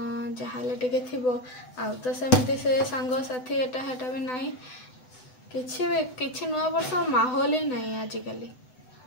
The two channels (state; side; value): late; right; 7.9 ms